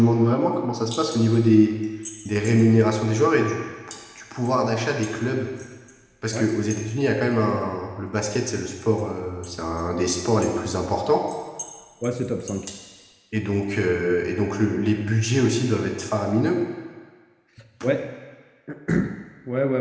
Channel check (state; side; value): identical; both; correlation 1.00